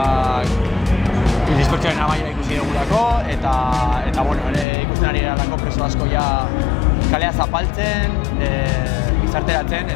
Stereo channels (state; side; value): drops out; right; at 4.7 s